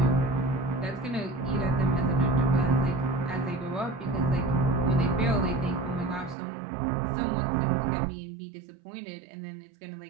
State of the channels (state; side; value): drops out; left; at 6.4 s